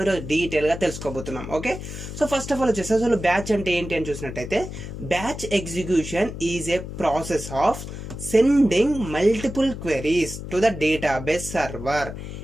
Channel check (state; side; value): noise; left; hum, 9 dB below the sound